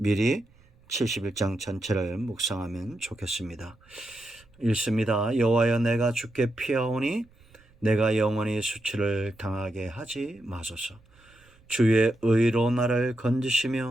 71장 전체를 묵상하면 좋겠습니다. 읽습니다. 여호와여, 내가 주께 피하오니 내가 영원히 수치를 당하게 하지 마소서. 주의 의로 나를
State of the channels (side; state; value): right; noise; rumble, 29 dB below the sound